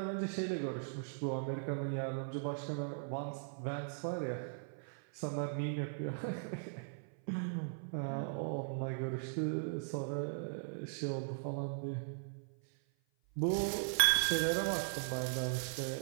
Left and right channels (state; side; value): silent; left; 52 dB below the other